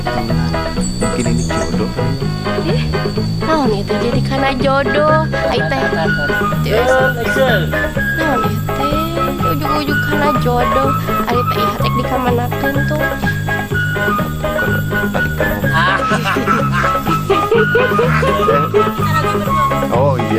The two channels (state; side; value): identical; both; correlation 1.00